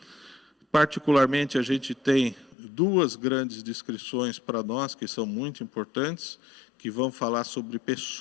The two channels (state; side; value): drops out; right; at 2.6 s